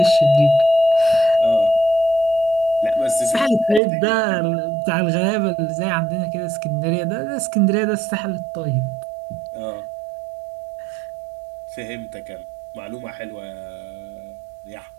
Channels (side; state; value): left; drops out; at 3.8 s